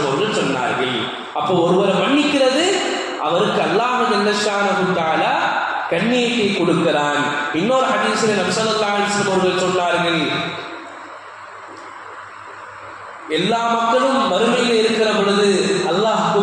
அவர்கள் சொன்னார்கள். அப்போ ஒருவரை மன்னிக்கிறது அவருக்கு அல்லாஹ் ஜல்ல ஷானஹு தஆலா கண்ணியத்தை கொடுக்கிறான். இன்னொரு ஹதீஸில் நபி ஸல்லல்லாஹு அலைஹி வஸல்லம் அவர்கள் சொன்னார்கள், எல்லா மக்களும் மறுமையில் இருக்கிற பொழுது அல்லாஹ்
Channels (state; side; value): identical; both; correlation 1.00